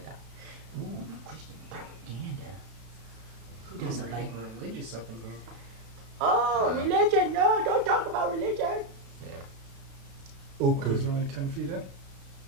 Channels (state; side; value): late; left; 32 ms